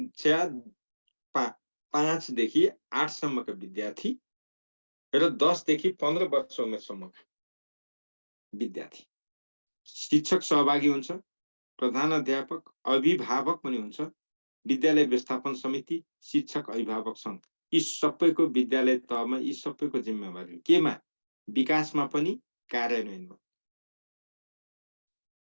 5 देखि 8 सम्मका विद्यार्थी र 10 देखि 15 वर्ष उमेरसम्मका विद्यार्थी। शिक्षक सहभागी हुन्छ, प्रधान अध्यापक, अभिभावक पनि हुन्छ, विद्यालय व्यवस्थापन समिति, शिक्षक अभिभावक सङ्घ, यी सबैको विद्यालय तहमा यी सबैको जिम्मेवारी केमा? विकासमा पनि कार्यान्वयनमा।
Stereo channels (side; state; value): both; inverted; correlation -1.00